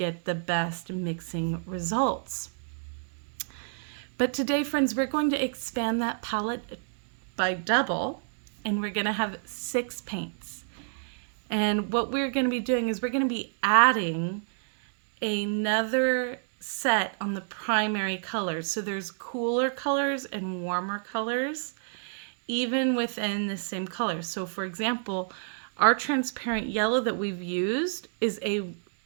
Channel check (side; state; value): left; silent; digital silence